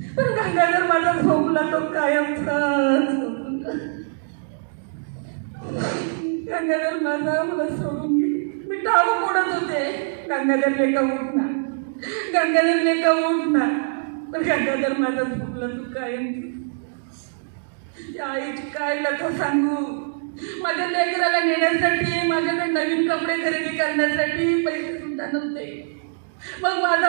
पण गंगाधर माझा झोपला तो कायमचा. गंगाधर मला सोडून गेली. मी टाळू मोडत होते, गंगाधर लेका उठना. पण गंगाधर माझा झोपला तो कायमची. त्या आईची काय लथा सांगू. माझ्या लेकराला नेण्यासाठी, माझ्याकडे नवीन कपडे खरेदी करण्यासाठी पैसे सुद्धा नव्हते. मग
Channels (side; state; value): left; silent; digital silence